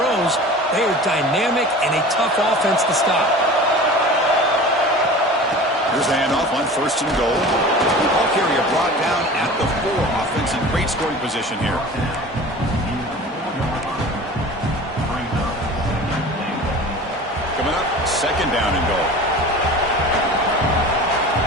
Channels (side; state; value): both; normal; correlation 0.38